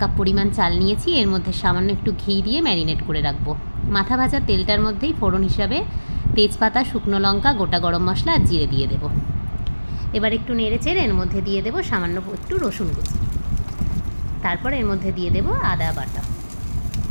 পরিমাণ চাল নিয়েছি। এর মধ্যে সামান্য একটু ঘি দিয়ে ম্যারিনেট করে রাখবো। মাথা ভাজা তেলটার মধ্যেই ফোড়ন হিসাবে তেজপাতা, শুকনো লঙ্কা, গোটা গরম মশলা আর জিরে দিয়ে দেবো। এবার একটু নেড়ে চেড়ে এর মধ্যে দিয়ে দেবো সামান্য একটু রসুন কুচি। তারপর এর মধ্যে দিয়ে দেবো আদা বাটা।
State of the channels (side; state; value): both; inverted; correlation -1.00